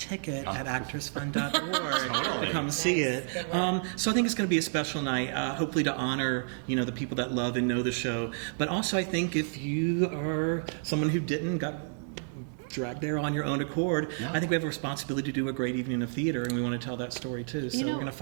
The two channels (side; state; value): left; silent; 57 dB below the other